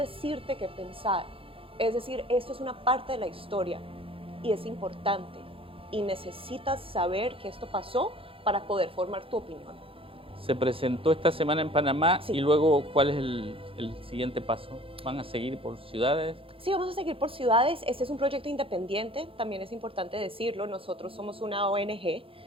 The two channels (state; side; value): late; left; 0.27 ms